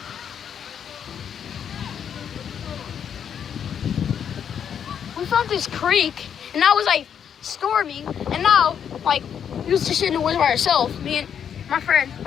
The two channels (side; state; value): right; quieter; 8.2 dB